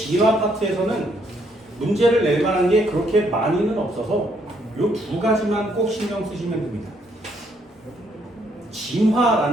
파트에서는 문제를 낼 만한 게 그렇게 많이는 없어서 이 2가지만 꼭 신경 쓰시면 됩니다.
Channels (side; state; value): both; normal; correlation 0.71